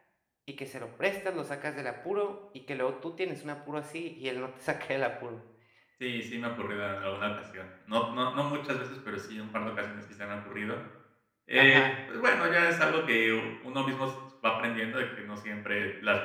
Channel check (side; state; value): both; identical; correlation 1.00